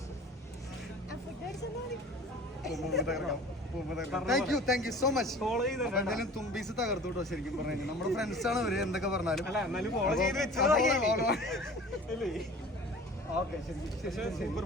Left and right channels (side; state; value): both; normal; correlation 0.43